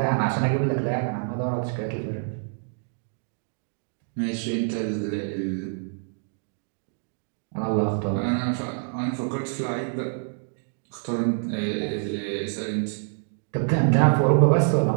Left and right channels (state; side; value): silent; left; digital silence